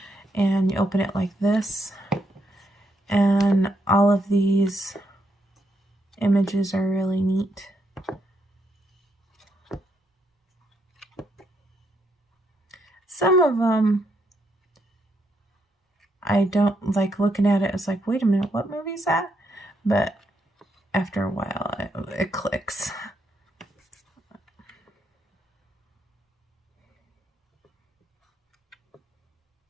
And you open it like this. And all of these images are really neat. Some of them I don't like looking at it. It's like, wait a minute, what movie is that? But after a while, it clicks.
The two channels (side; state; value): both; normal; correlation 0.77